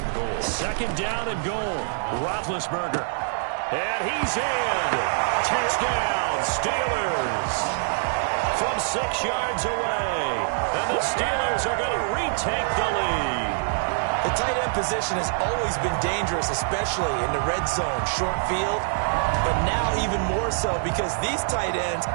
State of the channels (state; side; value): silent; left; digital silence